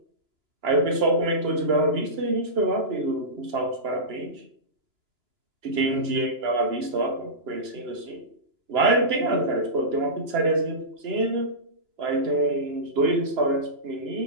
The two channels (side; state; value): left; late; 2.9 ms